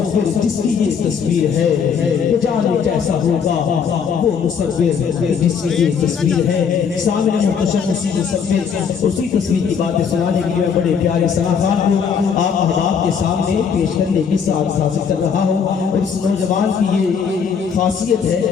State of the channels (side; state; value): right; quieter; 6.7 dB